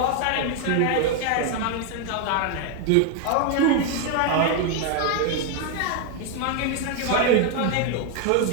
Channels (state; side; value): different; both; correlation 0.01